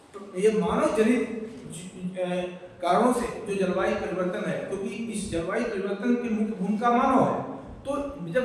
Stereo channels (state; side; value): identical; both; correlation 1.00